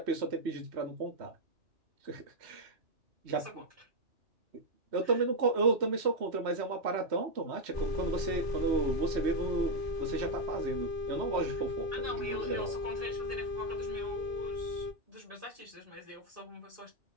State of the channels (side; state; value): left; late; 3.1 ms